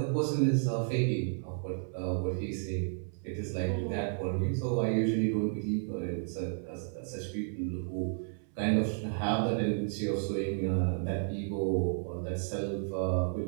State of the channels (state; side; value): silent; left; 56 dB below the other